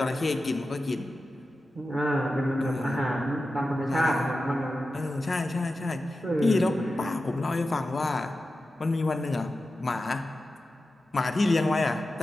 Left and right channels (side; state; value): both; normal; correlation 0.92